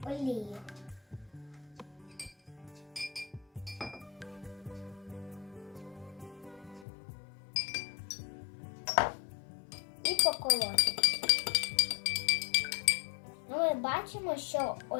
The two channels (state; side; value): drops out; right; at 6.9 s